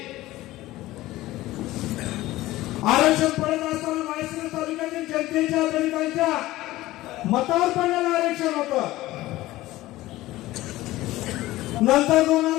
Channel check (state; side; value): quieter; right; 17.0 dB